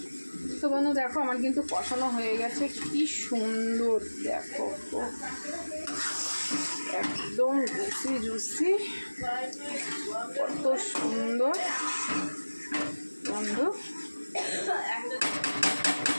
তো বন্ধু দেখো আমার কিন্তু কষানো হয়ে গেছে, কি সুন্দর দেখো, একদম জুসি কত সুন্দর বন্ধু।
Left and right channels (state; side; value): inverted; both; correlation -1.00